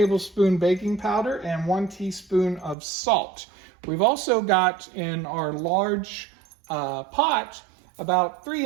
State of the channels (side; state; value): left; drops out; at 2.8 s